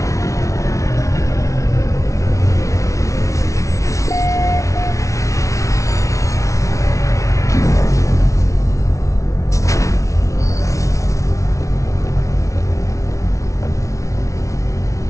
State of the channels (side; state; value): right; late; 0.15 ms